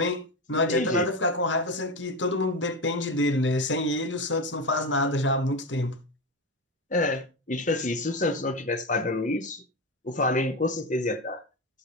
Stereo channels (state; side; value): normal; both; correlation 0.17